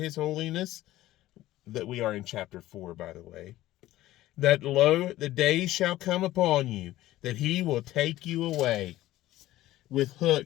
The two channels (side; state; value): right; quieter; 15.5 dB